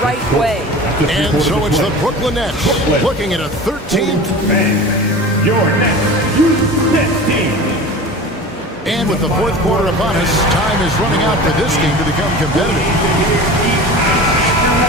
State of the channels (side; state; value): both; normal; correlation 0.35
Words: right way. And so it's the Brooklyn Nets looking at a 13th. Your next Nets team. And with the fourth quarter upon us, time is running out for this game to become competitive.